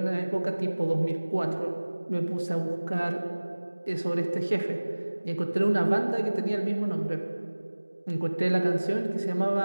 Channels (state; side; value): inverted; both; correlation -1.00